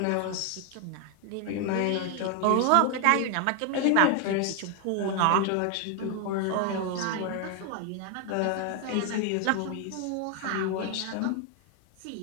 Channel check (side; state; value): both; different; correlation 0.01